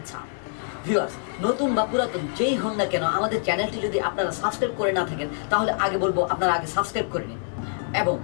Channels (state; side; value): silent; right; digital silence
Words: ভিউয়ার্স, নতুন বা পুরাতন যেই হন না কেন আমাদের চ্যানেলটি যদি আপনারা সাবস্ক্রাইব করে না থাকেন তাহলে আগে বলবো আপনারা আগে সাবস্ক্রাইব করে নিন, এবং